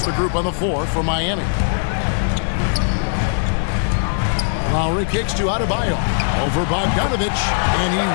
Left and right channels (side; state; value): right; silent; digital silence